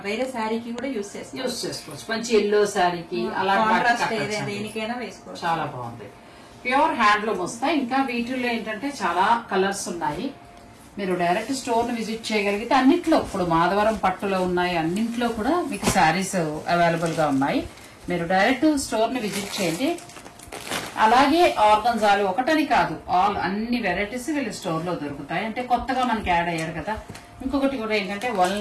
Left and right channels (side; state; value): both; identical; correlation 1.00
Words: వేరే శారీకి కూడా యూజ్ చేసుకోవచ్చు. మంచి ఎల్లో శారీకి అలా దేనికైనా వేసుకోవచ్చు. చాలా బాగుంది. ప్యూర్ హ్యాండ్లూమ్ వస్తాయి. ఇంకా వీటిల్లో ఏంటంటే చాలా కలర్స్ ఉన్నాయి. మీరు డైరెక్ట్ స్టోర్ ను విజిట్ చేయగలిగితే అన్నిట్లో ఇప్పుడు మాధవరం పట్టులో ఉన్నాయి, అన్నింట్లో కూడా మీకు శారీస్ అవైలబుల్ గా ఉన్నాయి. మీరు డైరెక్ట్ స్టోర్ ని విజిట్ చేయండి. అలాగే ఆర్గన్జాలు ఒకటని కాదు, అన్ని వెరైటీస్ వీళ్ళ స్టోర్ లో దొరుకుతాయి. అంటే కొత్తగా మనకి యాడ్ అయ్యారు కదా. ఇంకొకటి కూడా ఏంటంటే